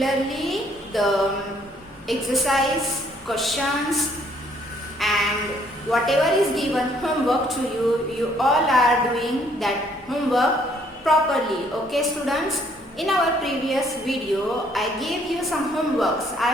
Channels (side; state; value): both; normal; correlation 0.65